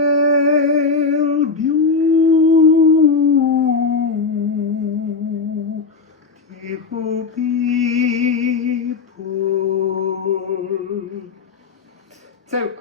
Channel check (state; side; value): quieter; right; 4.6 dB